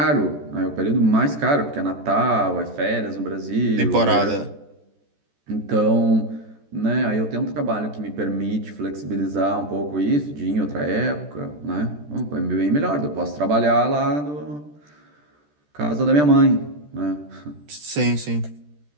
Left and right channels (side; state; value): left; late; 14 ms